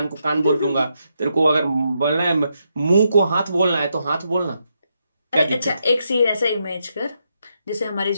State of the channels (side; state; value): both; inverted; correlation -0.81